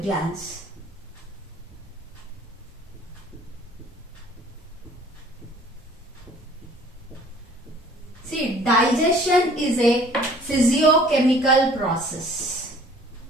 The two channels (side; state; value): both; normal; correlation 0.53